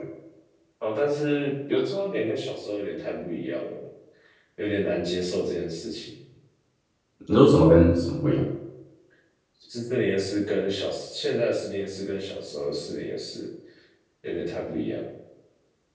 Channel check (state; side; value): identical; both; correlation 1.00